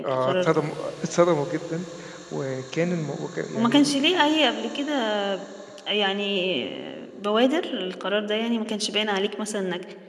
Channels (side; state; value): both; identical; correlation 1.00